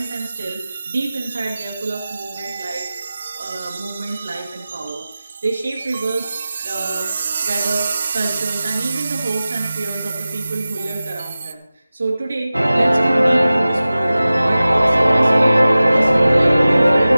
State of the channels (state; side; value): inverted; both; correlation -0.96